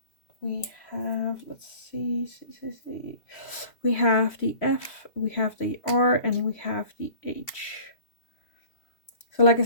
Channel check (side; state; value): right; late; 3.0 ms